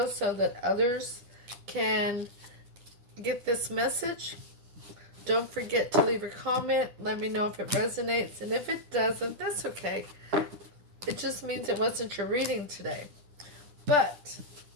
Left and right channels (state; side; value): late; left; 9.8 ms